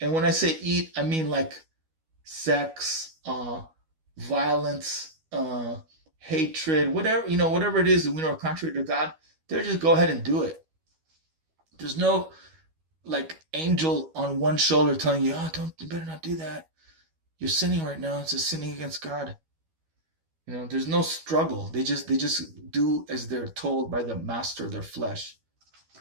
And when I say eat, I mean like sex, violence, hatred, whatever it is that we know are contrary to God, they'll just go ahead and do it. There's no like angel on one shoulder telling you, oh, don't, you better not do that. You're sinning right now. It's a sinning against God. There's no struggle. They just do as they're told by the master of their flesh.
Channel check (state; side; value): late; left; 12 ms